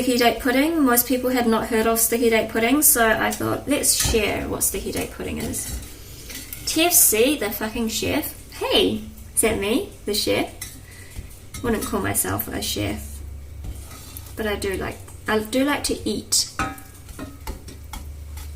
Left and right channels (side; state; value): both; identical; correlation 1.00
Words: date pudding, most people had not heard of sticky date pudding, so I thought, let's share what sticky date pudding is. TFC, the fucking chef. Hey, is that me, the chef? Wouldn't call myself a chef, but I do like to eat.